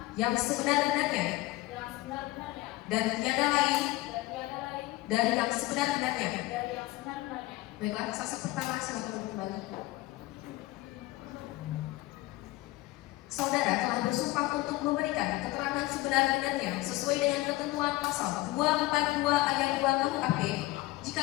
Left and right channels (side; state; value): right; quieter; 18.9 dB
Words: yang sebenar-benarnya dan tiada lain dari yang sebenar-benarnya. Baiklah, saksi pertama silakan kembali. Saudara telah bersumpah untuk memberikan keterangan sebenar-benarnya sesuai dengan ketentuan pasal 242 ayat 2 KUHP. Jika